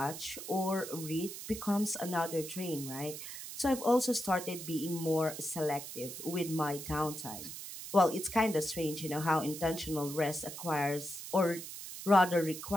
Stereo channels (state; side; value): noise; right; hiss, 10 dB below the sound